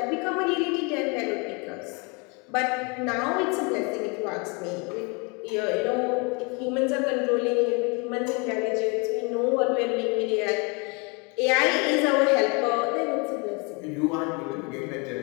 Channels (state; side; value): quieter; right; 31.5 dB